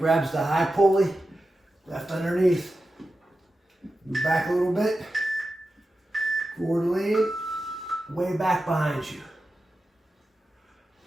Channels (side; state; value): both; normal; correlation 0.92